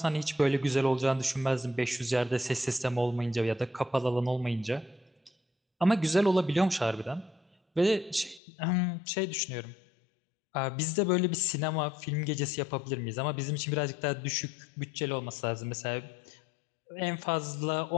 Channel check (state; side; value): drops out; right; at 8.4 s